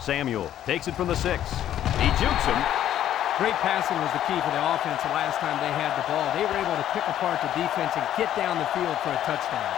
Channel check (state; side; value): quieter; right; 11.4 dB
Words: takes it from the 6. He jukes him. Great passing was the key for the offense the last time they had the ball. They were able to pick apart the defense and get down the field for a touchdown.